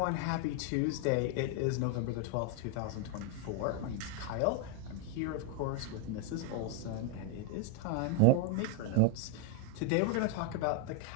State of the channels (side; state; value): both; different; correlation 0.00